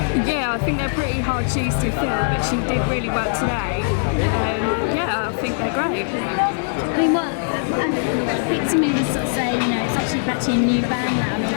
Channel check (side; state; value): right; silent; digital silence